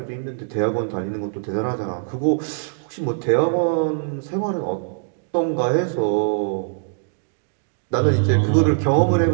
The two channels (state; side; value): silent; left; digital silence